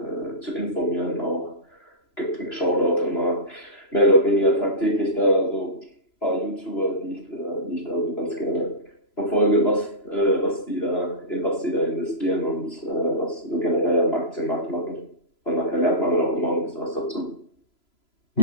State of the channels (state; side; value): late; right; 3.0 ms